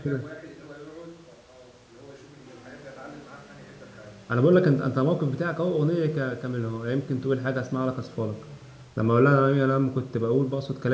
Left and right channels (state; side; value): identical; both; correlation 1.00